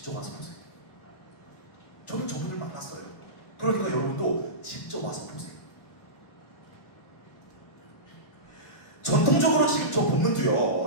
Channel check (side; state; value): right; late; 1.4 ms